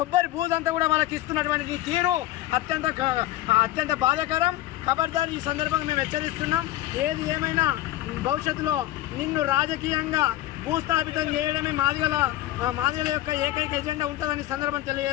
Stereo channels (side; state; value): right; quieter; 15.2 dB